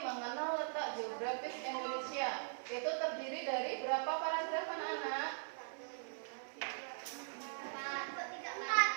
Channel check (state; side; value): silent; left; 50 dB below the other